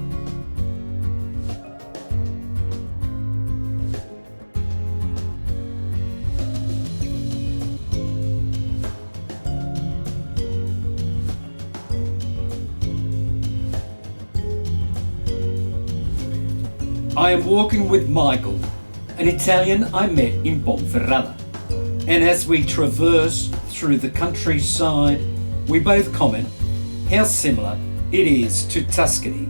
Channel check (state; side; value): inverted; both; correlation -1.00